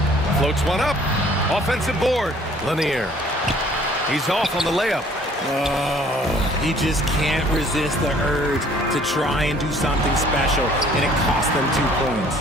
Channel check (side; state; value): both; normal; correlation 0.57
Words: Floats one up. Offensive board. Lanier. He's off on the layup. Oh, he just can't resist the urge to try and do something special, and it cost them 2